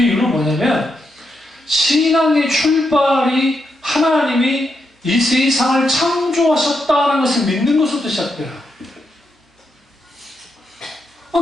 이유는 뭐냐면 신앙의 출발이 하나님이 이 세상을 창조하셨다는 것을 믿는 것부터 시작돼요.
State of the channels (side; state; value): both; normal; correlation 0.83